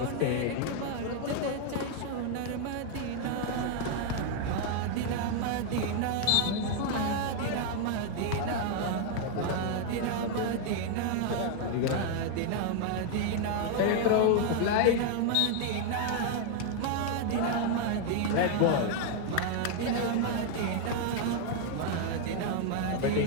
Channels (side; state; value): both; different; correlation 0.00